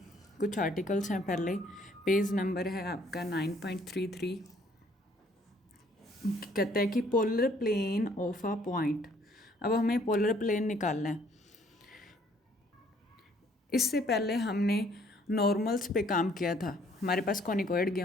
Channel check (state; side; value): normal; both; correlation 0.62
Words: कुछ आर्टिकल्स हैं। पहले पेज नंबर है आपका 9.33। कहता है कि polar plane of a point. अब हमें पोलर प्लेन निकालना है। इससे पहले हमने नॉर्मल्स पे काम किया था। हमारे पास कॉनिकॉइड